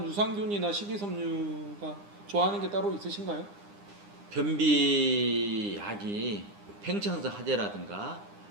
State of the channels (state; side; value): late; left; 9.8 ms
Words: 유산균이나 식이섬유가 좋아하는 게 따로 있으신가요? 변비약이 팽창성 하재라든가